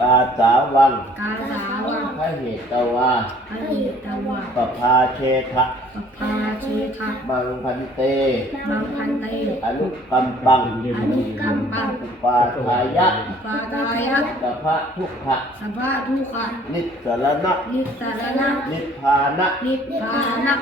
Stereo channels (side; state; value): both; normal; correlation 0.56